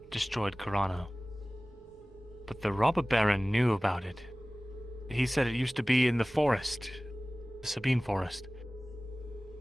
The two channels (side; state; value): both; normal; correlation 0.98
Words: destroyed Carano. But the robber baron knew about it. He said it used to be in the forest, the Sabine forest,